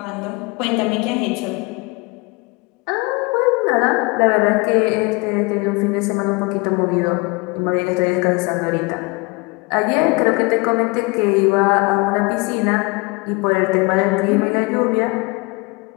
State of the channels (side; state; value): right; quieter; 27.1 dB